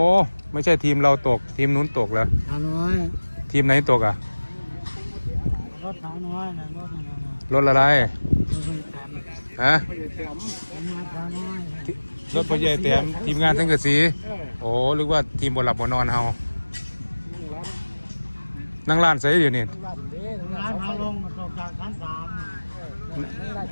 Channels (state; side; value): inverted; both; correlation -1.00